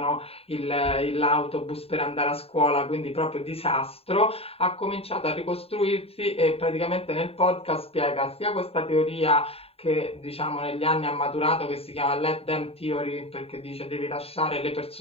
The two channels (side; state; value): right; late; 0.28 ms